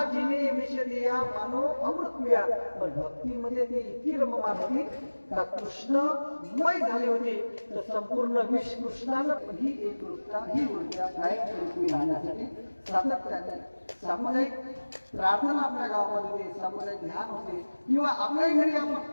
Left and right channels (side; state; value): both; inverted; correlation -1.00